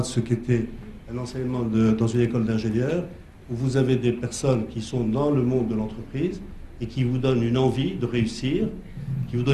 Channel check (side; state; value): both; identical; correlation 1.00